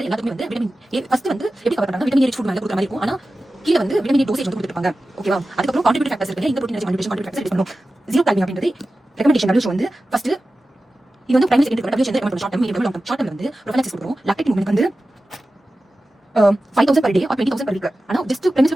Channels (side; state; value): both; normal; correlation 0.94